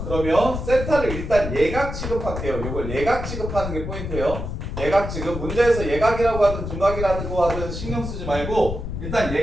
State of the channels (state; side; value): noise; left; rumble, 6 dB below the sound